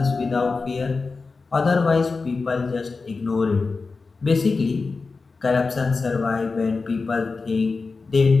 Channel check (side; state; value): right; quieter; 4.2 dB